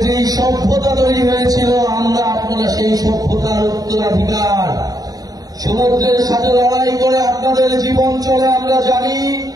যেই সভ্যতা তৈরি হয়েছিল, আপনারা সেই সভ্যতার উত্তরাধিকার। সমুদ্রের সাথে লড়াই করে আপনাদের জীবন চলে আমরা জানি।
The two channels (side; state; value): left; late; 0.18 ms